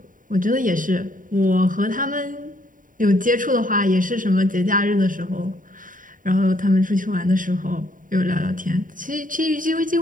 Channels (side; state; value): left; late; 0.39 ms